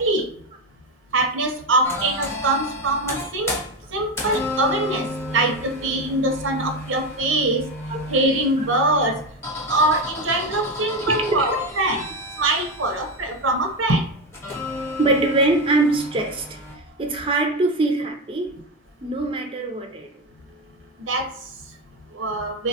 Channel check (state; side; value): normal; both; correlation 0.14